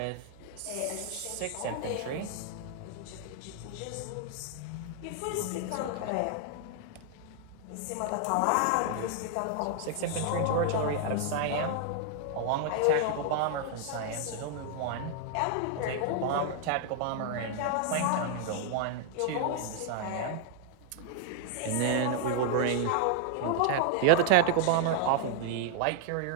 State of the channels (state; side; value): different; both; correlation 0.00